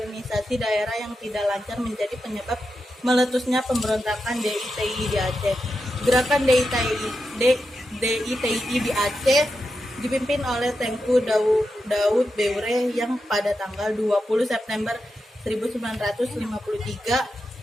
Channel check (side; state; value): both; normal; correlation 0.88